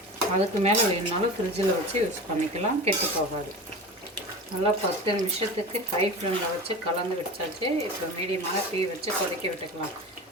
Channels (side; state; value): both; normal; correlation 0.31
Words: அதுக்கு மேலே வேணுனாலும் ஃப்ரிட்ஜில் வச்சு யூஸ் பண்ணிக்கலாம், கெட்டு போகாது. நல்லா 10 நிமிஷத்துக்கு ஹை ஃப்ளேமில் வச்சு கலந்து வச்சாச்சு. இப்போ மீடியமான தீ வச்சு கொதிக்க விட்டுக்கலாம்.